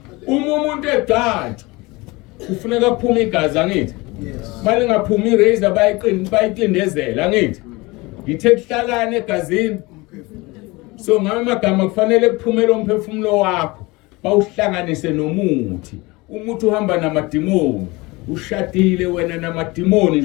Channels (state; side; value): quieter; right; 23.3 dB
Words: uma umuntu egcatshwa kufuneka kuphume igazi angithi Manje ngaphuma irazor bayiqindezela ngithi. Ngithe kuhlalane egazini. So ngamagama kufanele kuphumele umphefumulo wakho bawuhlanganise nomuthi. Umuthi uhamba namadimoni. Ushadile wena namadimoni